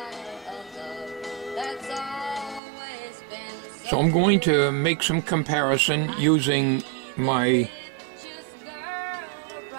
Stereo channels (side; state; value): left; drops out; at 2.6 s